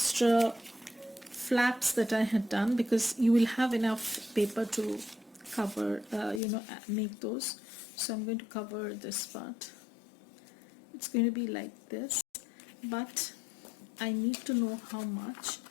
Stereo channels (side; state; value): right; drops out; at 6.4 s